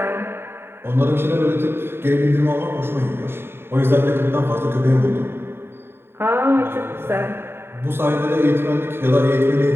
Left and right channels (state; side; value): late; left; 0.11 ms